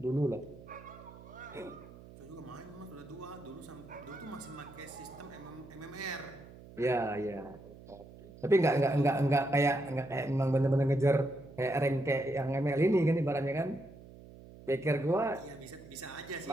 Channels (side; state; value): right; noise; hum, 18 dB below the sound